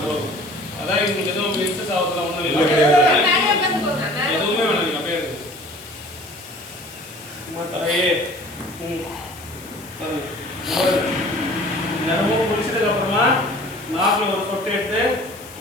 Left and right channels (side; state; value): left; noise; hiss, 19 dB below the sound